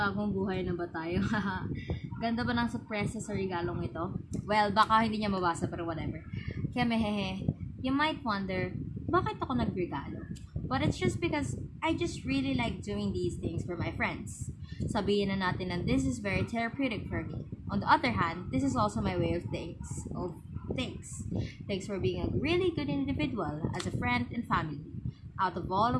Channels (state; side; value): identical; both; correlation 1.00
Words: buhay na ba tayo? Ganda ba ng surpresa sa regalong ito? Well, baka hindi niya mabasa pero whatever. Kaya mehehe, you might wonder, bakit ako nagregalo? But it's just because I just really like doing these things for my friends. Sabihin na natin na this is very therapeutic for me. On the other hand, this is also my way of thanks. Thanks for being a really good individual as a friend and family. Out of all